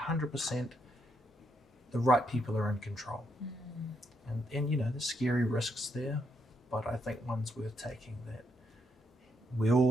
the right people are in control. And you know, there's scary risks there, but I think one's worth taking, that we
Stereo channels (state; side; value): normal; both; correlation 0.78